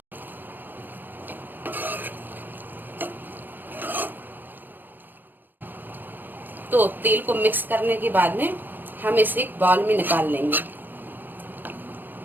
तो तेल को मिक्स करने के बाद में हम इसे एक बाउल में निकाल लेंगे।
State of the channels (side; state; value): left; late; 0.090 ms